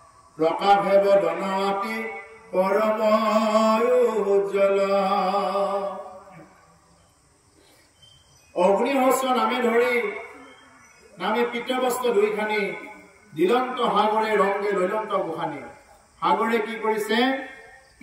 প্ৰকাশে বদনাতি পৰম উজ্জ্বল অগ্নিহস্ত নামে ধৰি নামে পিতবস্ত্ৰ দুইখানি দিলন্ত সাগৰে ৰংগে লৈলন্ত গোখানি সাগৰে কি কৰিছে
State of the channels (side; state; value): both; identical; correlation 1.00